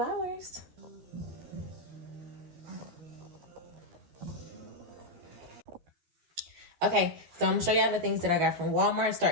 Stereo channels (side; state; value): left; late; 12 ms